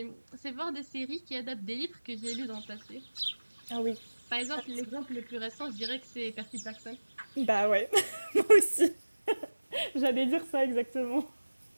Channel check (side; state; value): both; inverted; correlation -1.00